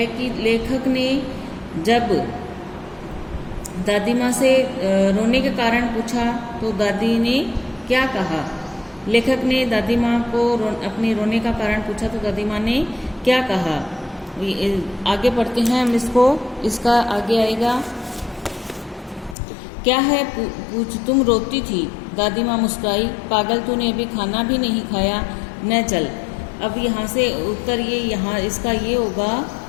कि लेखक ने जब दादी माँ से रोने के कारण पूछा तो दादी ने क्या कहा। लेखक ने दादी माँ को अपने रोने का कारण पूछा तो दादी माँ ने क्या कहा। आगे पढ़ते हैं हम इसका आगे आएगा। क्या है पूछ, तुम रोती थी? दादी माँ मुस्कुराई। पागल, तूने अभी खाना भी नहीं खाया, न चल। अब यहाँ से उत्तर इसका ये होगा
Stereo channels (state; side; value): drops out; right; at 19.4 s